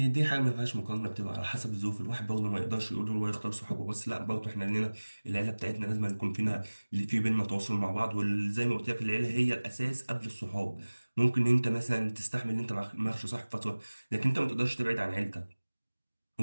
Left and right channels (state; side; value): inverted; both; correlation -1.00